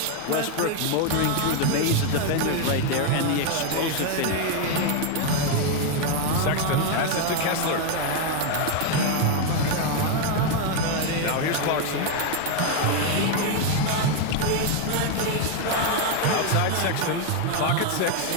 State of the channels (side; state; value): both; different; correlation 0.01